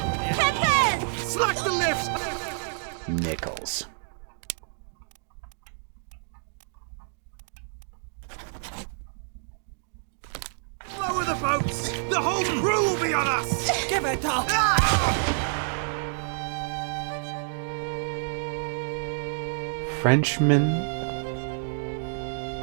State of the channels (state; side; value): silent; left; digital silence